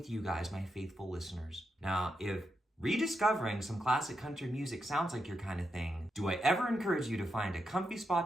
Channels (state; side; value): normal; both; correlation 0.85